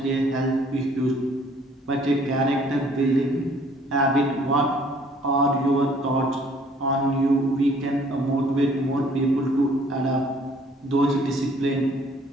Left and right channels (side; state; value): both; normal; correlation 0.59